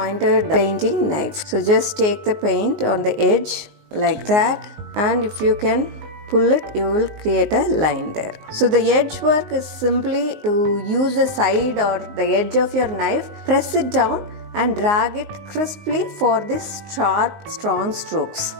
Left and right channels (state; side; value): late; left; 19 ms